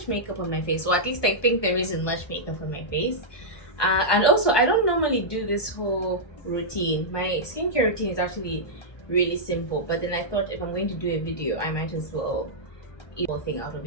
makeup on my face, or at least I think there isn't much makeup on my face. And also, I don't normally do this whole routine. My skincare routine is actually really simple, but then I thought if I'm going to do a video, I might as well eat the whole thing out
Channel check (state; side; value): late; right; 1.2 ms